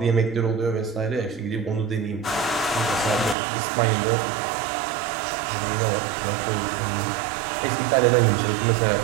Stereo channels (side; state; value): left; drops out; at 3.4 s